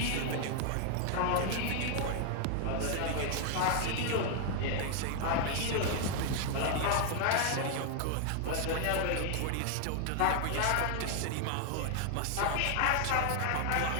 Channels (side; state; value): both; different; correlation 0.00